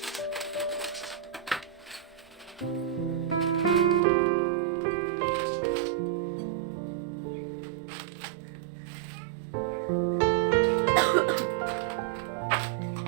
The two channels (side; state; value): left; drops out; at 4.0 s